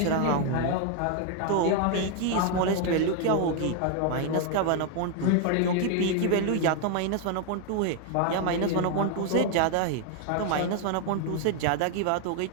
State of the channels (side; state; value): both; different; correlation 0.00